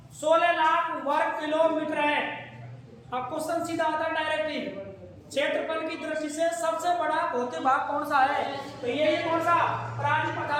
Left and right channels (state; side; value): identical; both; correlation 1.00